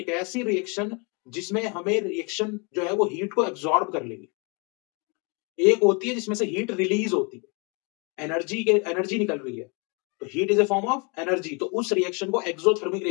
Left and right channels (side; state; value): right; quieter; 31.8 dB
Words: ऐसी रिएक्शन जिसमें हमें रिएक्शन जो है वो हीट को एब्जॉर्ब कर लेगी। एक होती है जिसमें से हीट रिलीज होती है, एनर्जी निकल रही है, तो heat is a form of energy, तो उस रिएक्शन को एक्सोथर्मिक